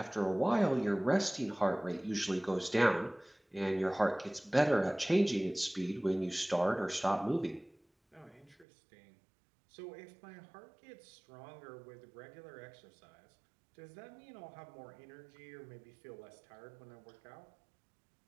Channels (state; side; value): drops out; left; at 8.7 s